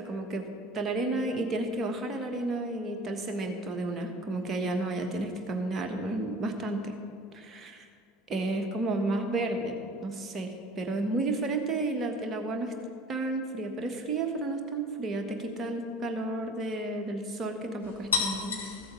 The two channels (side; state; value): both; normal; correlation 0.43